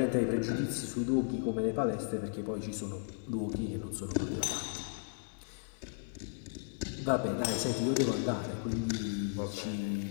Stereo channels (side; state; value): right; silent; 54 dB below the other